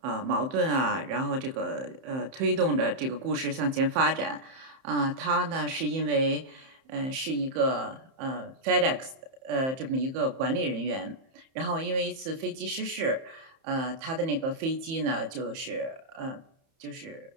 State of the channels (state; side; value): late; left; 31 ms